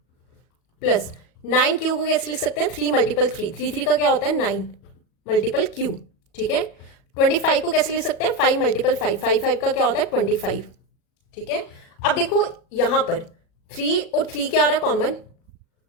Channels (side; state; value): right; late; 37 ms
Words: प्लस 9q को कैसे लिख सकते हैं, 3 मल्टीपल 3, 3 का क्या होता है 9 मल्टीपल q। ठीक है, 25 को कैसे लिख सकते हैं, 5 मल्टीपल 5, 5 का क्या होता है 25। ठीक है, अब देखो यहां पर 3 और 3 क्या आ रहा है, कॉमन।